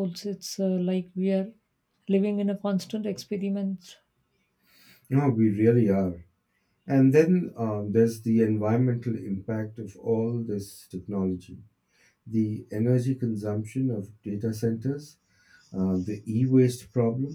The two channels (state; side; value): identical; both; correlation 1.00